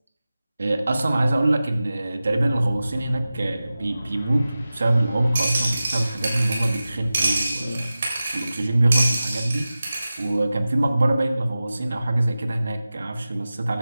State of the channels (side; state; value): both; inverted; correlation -0.95